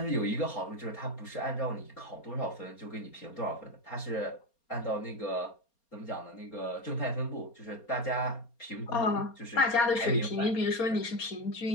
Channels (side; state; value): right; late; 4.3 ms